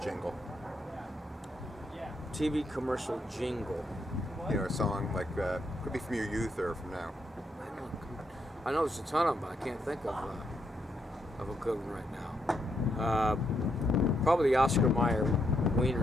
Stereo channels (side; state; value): both; normal; correlation 0.78